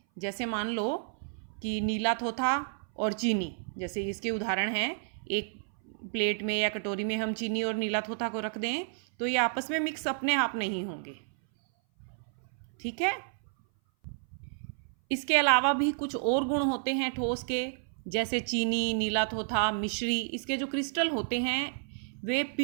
जैसे मान लो कि नीला थोथा और चीनी, जैसे इसके उदाहरण हैं। एक प्लेट में या कटोरी में हम चीनी और नीला थोथा को रख दें तो ये आपस में मिक्स अपने आप नहीं होंगे, ठीक है। इसके अलावा भी कुछ और गुण होते हैं ठोस के, जैसे चीनी, नीला थोथा, मिश्री। इसके जो क्रिस्टल होते हैं वे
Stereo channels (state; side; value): silent; left; 57 dB below the other